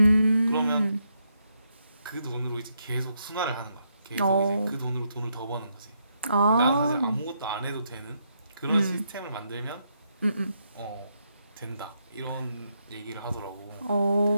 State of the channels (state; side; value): inverted; both; correlation -0.78